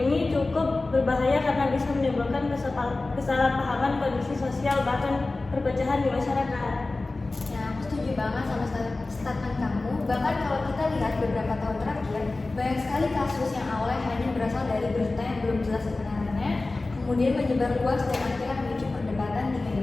ini cukup berbahaya karena bisa menimbulkan kesalahpahaman kondisi sosial bahkan perpecahan di masyarakat. Ya, aku setuju banget sama statement kamu. Bahkan kalau kita lihat beberapa tahun terakhir, banyak sekali kasus yang awalnya hanya berasal dari berita yang belum jelas kebenarannya, kemudian menyebar luas dan akhirnya memicu perdebatan di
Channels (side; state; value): right; quieter; 3.2 dB